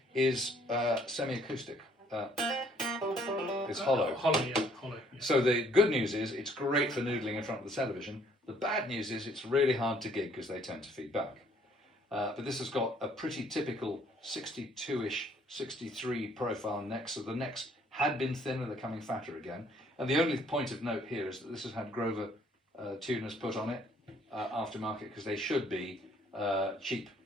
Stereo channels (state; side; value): normal; both; correlation 0.63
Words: is semi-acoustic. It's hollow. Hollow, yeah. Hollow. Yeah. So the good news is it's great for noodling in front of the television. The bad news is it's really hard to gig because they tend to feed back. But this has got a pretty typical 62-ish, 63 profile neck. So the necks had been thinner, they're coming fatter again. And the only point of note here is that this has had Grover tuners put on it aftermarket because they should be cheap